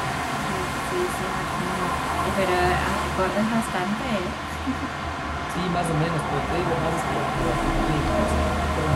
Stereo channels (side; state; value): both; identical; correlation 1.00